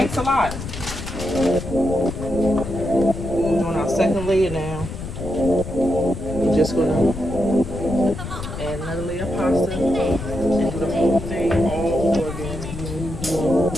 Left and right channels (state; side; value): noise; left; rumble, 8 dB below the sound